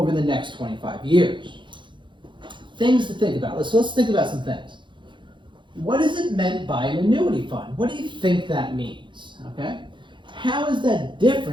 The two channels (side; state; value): left; late; 0.23 ms